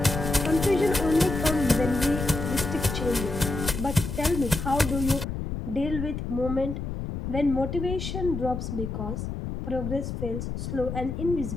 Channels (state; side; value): noise; left; rumble, 5 dB below the sound